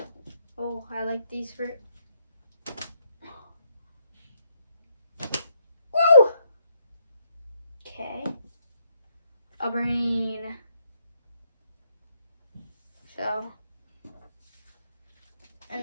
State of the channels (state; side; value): inverted; both; correlation -0.73